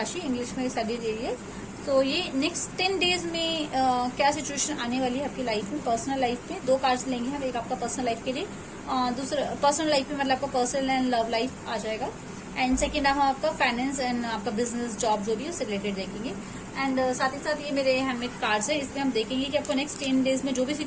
इंग्लिश में सैजिटेरियस। तो ये नेक्स्ट 10 डेज में क्या सिचुएशन आने वाली है आपकी लाइफ में, पर्सनल लाइफ में। 2 कार्ड्स लेंगे हम, एक आपका पर्सनल लाइफ के लिए, दूसरा पर्सनल लाइफ में मतलब आपका पर्सनल एंड लव लाइफ आ जाएगा, एंड सेकेंड हम आपका फाइनेंस एंड आपका बिजनेस जॉब जो भी है उससे रिलेटेड देखेंगे। एंड साथ ही साथ ये मेरे हैंडमेड कार्ड्स है, इसमें हम देखेंगे कि आपको नेक्स्ट 10 डेज में जो भी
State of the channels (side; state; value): both; identical; correlation 1.00